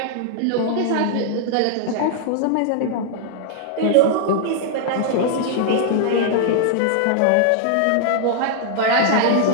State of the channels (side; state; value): both; different; correlation -0.01